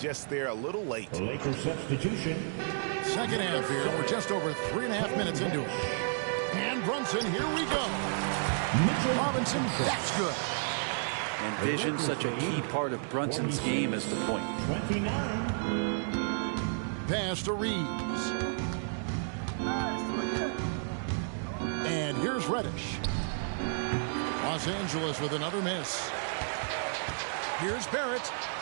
just there a little late. Lakers substitution. Second half here. We're just over 3.5 minutes into it. And Brunson, here we go. Robinson, that's good. And vision, such a key part of Brunson's game as the point. 29. Pass to Reeves. And here's Reddish. Los Angeles with another miss. Here's Barrett.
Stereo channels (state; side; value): silent; left; digital silence